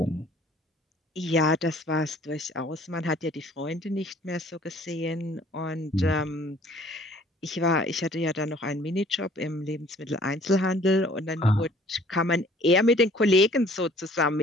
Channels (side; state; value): both; normal; correlation 0.55